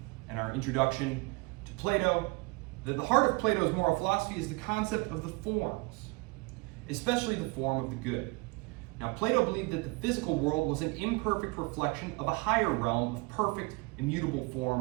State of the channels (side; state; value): left; quieter; 27.1 dB